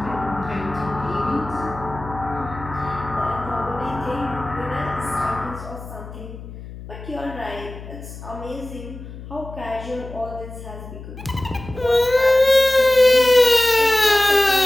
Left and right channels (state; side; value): noise; left; hum, 13 dB below the sound